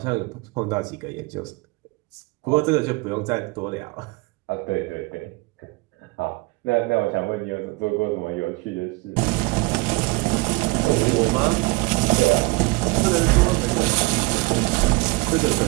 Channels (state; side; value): quieter; left; 25.5 dB